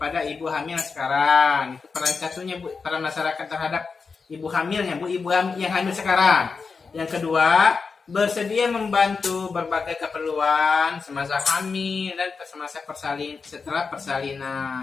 ibu hamil sekarang. Itu peran satunya Bu, peran masyarakat terhadap ibu hamilnya, Bu, ibu yang hamil sekarang. Yang kedua, bersedia membantu berbagai keperluan semasa hamil dan semasa setelah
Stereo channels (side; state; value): right; quieter; 4.9 dB